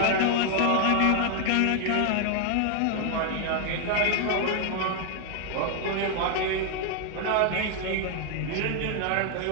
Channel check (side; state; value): both; different; correlation 0.00